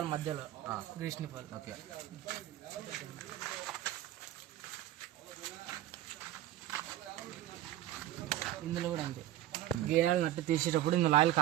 మధ్యలో గ్రీస్ నిప్పలు. ఓకే, ఇందులో కూడా అంతే. గేరాలు నట్టు తీసేటప్పుడు ఇందులో ఆయిల్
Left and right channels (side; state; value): left; quieter; 13.8 dB